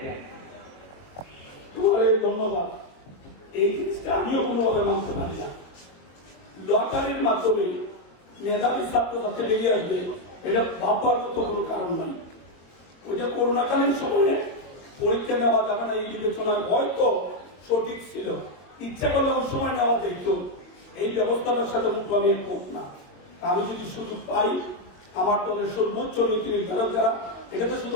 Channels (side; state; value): right; late; 22 ms